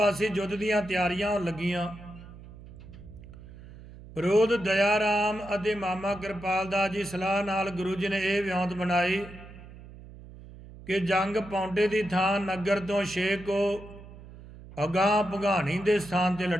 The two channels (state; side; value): noise; right; hum, 17 dB below the sound